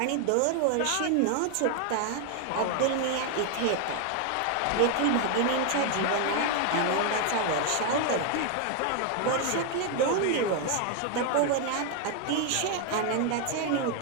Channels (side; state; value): both; different; correlation 0.00